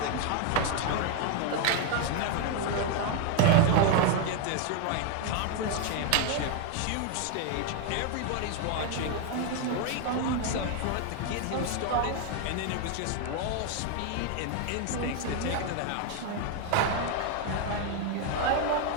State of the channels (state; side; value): different; both; correlation 0.01